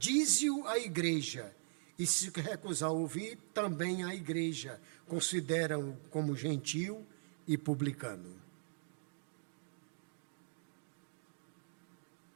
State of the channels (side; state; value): left; silent; digital silence